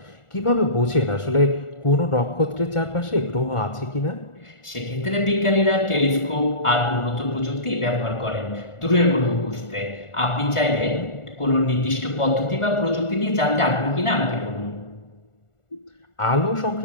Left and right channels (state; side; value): late; right; 1.4 ms